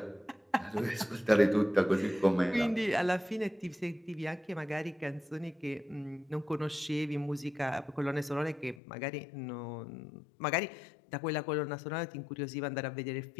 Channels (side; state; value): right; drops out; at 8.8 s